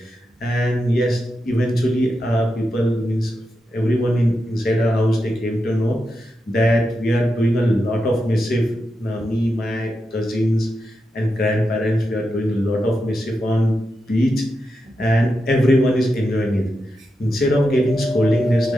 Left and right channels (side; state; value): both; normal; correlation 0.88